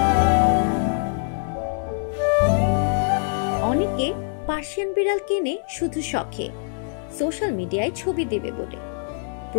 অনেকে পার্সিয়ান বিড়াল কিনে শুধু শখে, সোশ্যাল মিডিয়ায় ছবি দেবে বলে।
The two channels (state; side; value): silent; right; 63 dB below the other